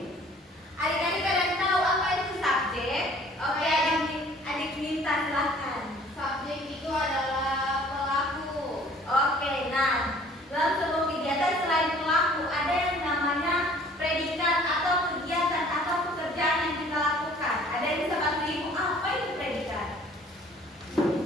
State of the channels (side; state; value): both; normal; correlation 0.53